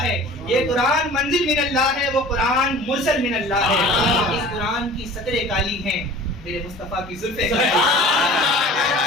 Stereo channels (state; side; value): normal; both; correlation 0.43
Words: ہے، یہ قرآن منزل من اللہ ہے، وہ قرآن مرسل من اللہ ہے، اس قرآن کی سطریں کالی ہیں، میرے مصطفیٰ کی زلفیں